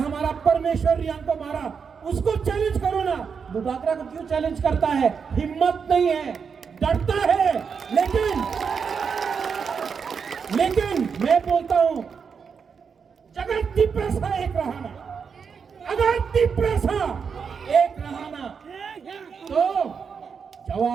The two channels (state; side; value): quieter; left; 6.1 dB